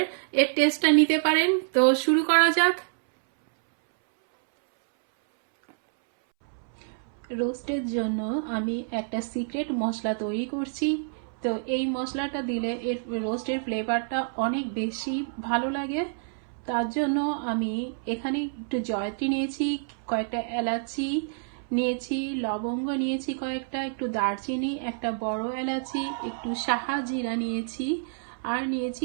এর টেস্টটা নিতে পারেন। তো শুরু করা যাক। রোস্টের জন্য আমি একটা সিক্রেট মশলা তৈরি করছি। তো এই মশলাটা দিলে এর রোস্টের ফ্লেভারটা অনেক বেশি ভালো লাগে। তার জন্য আমি এখানে একটু জয়ত্রী নিয়েছি, কয়েকটা এলাচি নিয়েছি, লবঙ্গ নিয়েছি কয়েকটা, একটু দারচিনি, একটা বড় এলাচি, একটু সাহা জিরা নিয়েছি, আর নিয়েছি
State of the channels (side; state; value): left; silent; 60 dB below the other